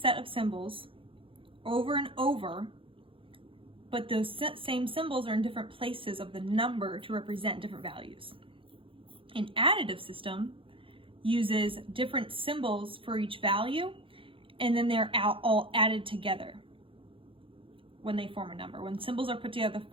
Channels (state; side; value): late; left; 0.25 ms